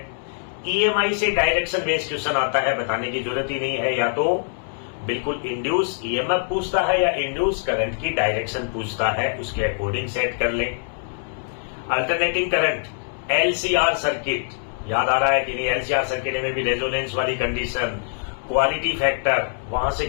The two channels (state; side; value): silent; right; 63 dB below the other